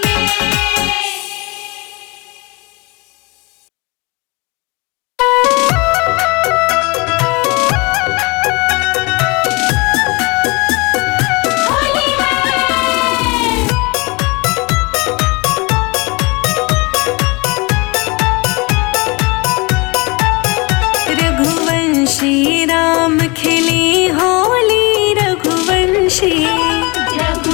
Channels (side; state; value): right; quieter; 26.9 dB